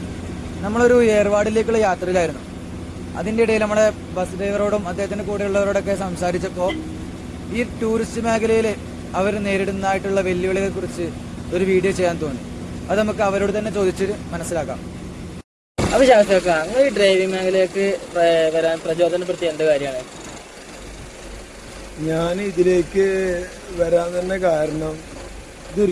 നമ്മളൊരു ഏർവാടിലേക്കുള്ള യാത്രയിലായിരുന്നു. അതിൻ്റെ ഇടയിൽ നമ്മുടെ ബസ് ഡ്രൈവറോടും അദ്ദേഹത്തിൻ്റെ കൂടെയുള്ളവരോടൊക്കെ സംസാരിച്ചപ്പോൾ ഈ ടൂറിസ്റ്റ് മേഖലയിൽ അവർ നേരിടുന്നതായിട്ടുള്ള വെല്ലുവിളികളെക്കുറിച്ച് ഒരു വീഡിയോ ചെയ്യാൻ തോന്നി. അത് നമുക്ക് അവരോട് തന്നെ ചോദിച്ചിട്ട് മനസ്സിലാക്കാം. അപ്പോൾ ശാസ്ത്രക്കാർ, നിങ്ങൾ ഈ ഡ്രൈവിംഗ് മേഖലയിലേക്ക് വരാൻ പ്രചോദനപ്പെടുത്തിയ എന്ത് കാര്യമാണ്? ഞാൻ ഇതിലേക്ക് വരാൻ തന്നെ കാരണം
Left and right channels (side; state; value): both; identical; correlation 1.00